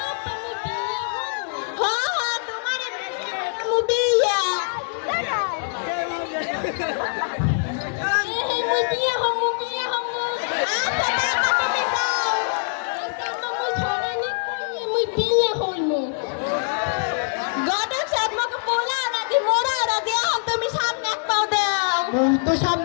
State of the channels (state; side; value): silent; right; digital silence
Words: হ্যাঁ তোমার মুবিয়া মুই বিয়ে হমু আচ্ছা বাবা তুমি যাও আচ্ছা মুই ছড়ানি কইয়ে মুই বিয়ে হইমু গডক সাহেব মকে পোলা রাজি মোরা রাজি এখন তুমি সামনে এক পাও দাও মুই তো